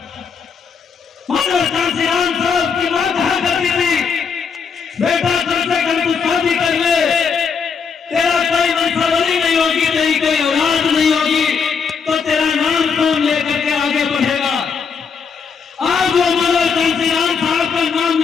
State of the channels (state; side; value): quieter; right; 6.0 dB